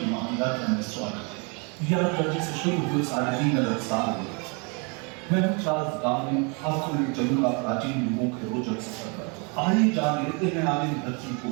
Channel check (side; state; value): left; quieter; 33.7 dB